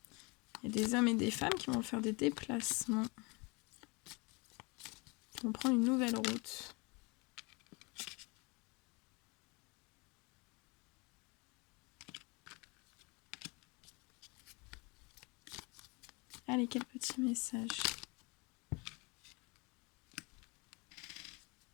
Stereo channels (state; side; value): quieter; right; 28.3 dB